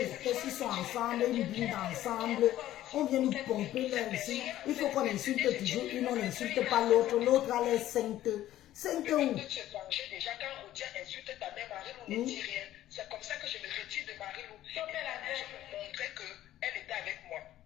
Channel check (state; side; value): quieter; right; 13.5 dB